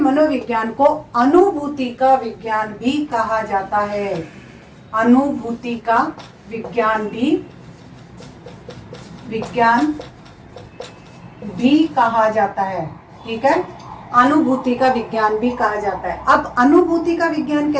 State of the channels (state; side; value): identical; both; correlation 1.00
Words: को अनुभूति का विज्ञान भी कहा जाता है। अनुभूति का विज्ञान भी कहा जाता है, ठीक है। अनुभूति का विज्ञान भी कहा जाता है। अब अनुभूति का विज्ञान